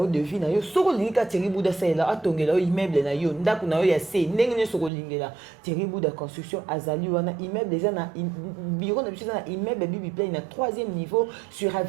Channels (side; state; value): left; drops out; at 4.9 s